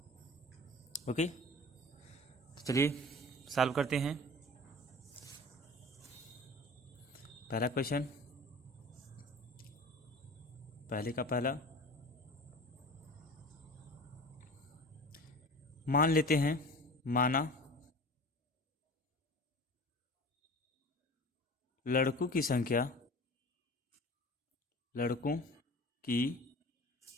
ओके, तो चलिए सॉल्व करते हैं। पहला क्वेश्चन, पहले का पहला, मान लेते हैं, माना लड़कों की संख्या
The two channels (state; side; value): normal; both; correlation 0.38